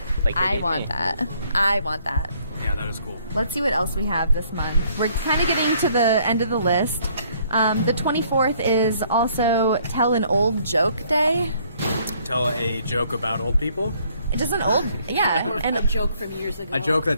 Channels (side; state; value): both; inverted; correlation -0.64